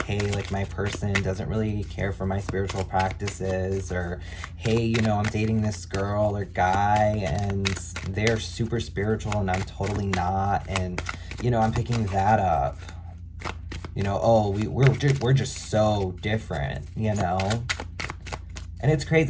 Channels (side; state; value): both; identical; correlation 1.00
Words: hey, like, my person doesn't really care for my spiritual practices, or, hey, you know, I'm dating this girl or guy and they're super spiritual and I'm totally not. And, you know, I'm picking that up. You know, oh, we're just so different, you know? And it's